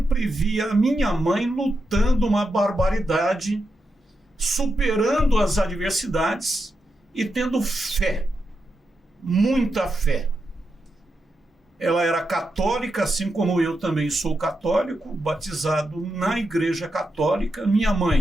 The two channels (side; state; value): both; normal; correlation 0.86